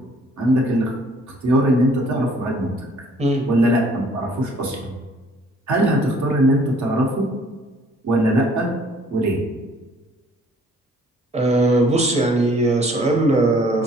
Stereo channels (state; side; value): normal; both; correlation 0.59